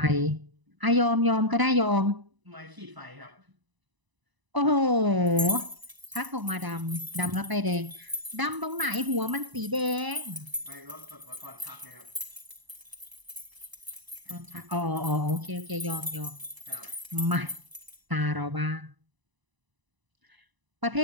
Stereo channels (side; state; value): left; late; 1.0 ms